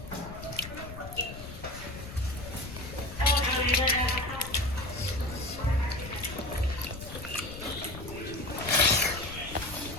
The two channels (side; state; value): left; noise; rumble, 12 dB below the sound